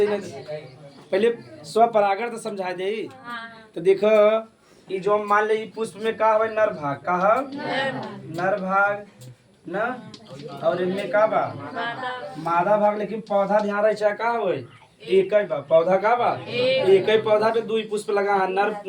पहले स्व परागण तो समझा दे। तो देखो ये जो मान ले पुष्प में का है नर भाग, का है नर भाग न, और इनमें का बा मादा भाग। लेकिन पौधा ध्यान रहे चाहे का हो एक ही बा, पौधा का बा एक ही पौधा पे 2 पुष्प लगा है।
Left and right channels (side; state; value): both; identical; correlation 1.00